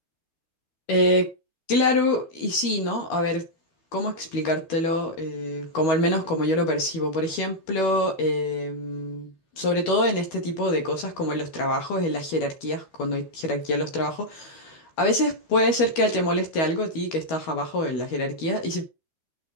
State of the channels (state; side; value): late; right; 12 ms